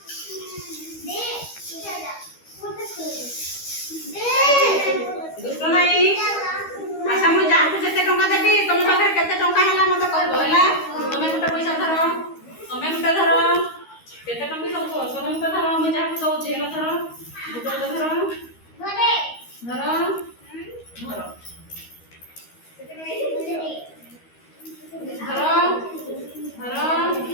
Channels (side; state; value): right; late; 13 ms